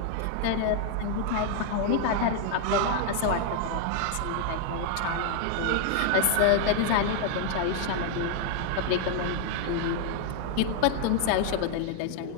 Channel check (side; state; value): both; different; correlation 0.00